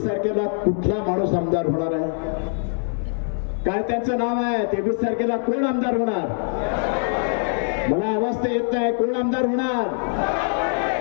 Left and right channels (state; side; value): silent; right; 63 dB below the other